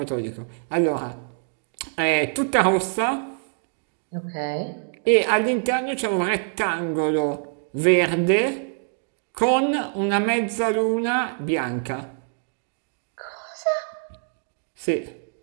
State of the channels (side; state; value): left; silent; 62 dB below the other